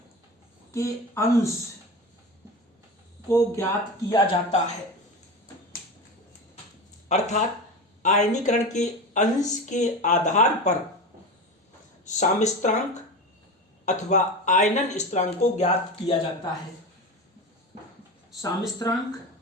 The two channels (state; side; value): normal; both; correlation 0.26